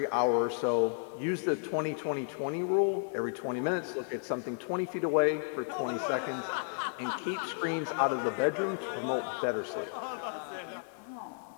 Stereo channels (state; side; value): silent; right; 55 dB below the other